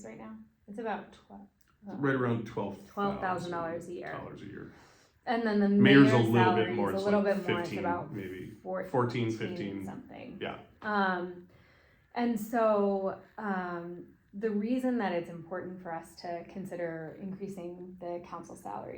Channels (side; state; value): both; identical; correlation 1.00